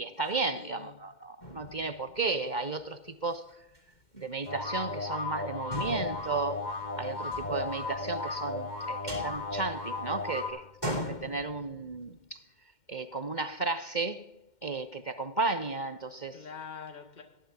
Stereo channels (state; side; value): late; right; 2.1 ms